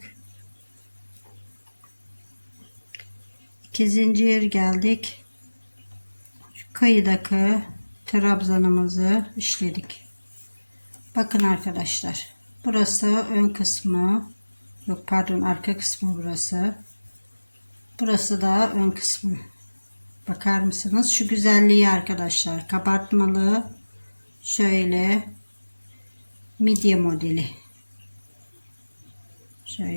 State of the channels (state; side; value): inverted; both; correlation -1.00